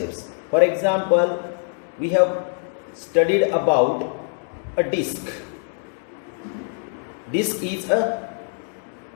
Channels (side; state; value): right; silent; 63 dB below the other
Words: For example, we have studied about a disk. Disk is a